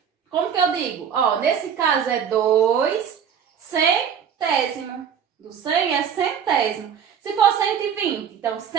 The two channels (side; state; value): left; quieter; 7.9 dB